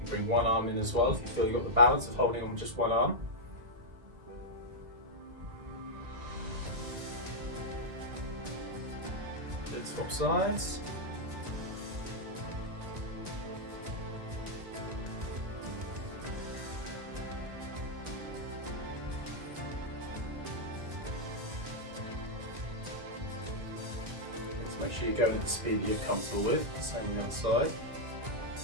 bring one arm in as well if you feel you've got the balance of holding on with just one arm. Good, swap sides. Make sure you're going at the speed that you're comfortable with. Same on the other side.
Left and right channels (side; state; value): left; late; 2.1 ms